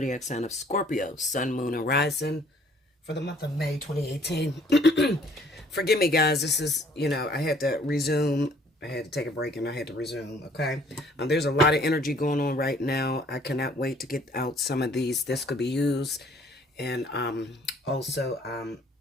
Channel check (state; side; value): normal; both; correlation 0.59